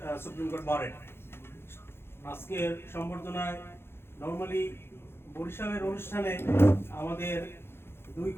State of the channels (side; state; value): right; late; 0.11 ms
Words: সুপ্রিম কোর্ট বারের। আজকের সম্বর্ধনায় নর্মালি বরিশালের অনুষ্ঠানে আমাদের দুই